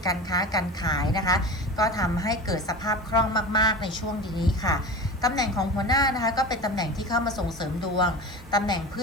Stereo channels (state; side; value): normal; both; correlation 0.31